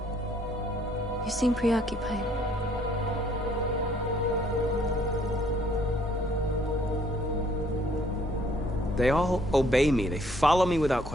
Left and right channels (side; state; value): both; normal; correlation 0.63